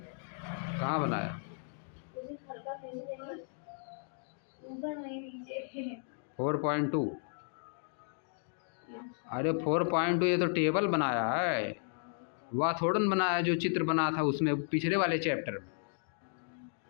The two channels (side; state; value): right; silent; digital silence